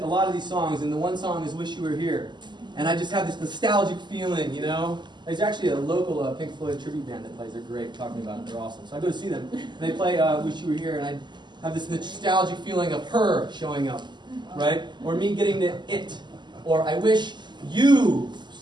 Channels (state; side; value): late; left; 0.21 ms